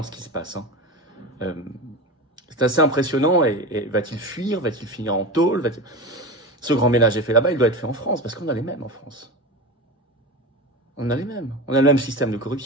ce qui se passe. C'est assez impressionnant. Et va-t-il fuir? Va-t-il finir en tôle? Ce grand ménage est fait là-bas, il doit être fait en France, parce qu'on a les mêmes en France. On a les mêmes. On a le même système de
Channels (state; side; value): normal; both; correlation 0.24